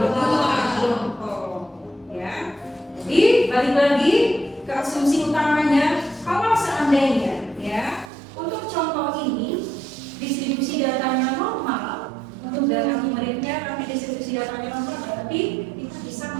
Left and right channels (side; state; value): left; drops out; at 8.1 s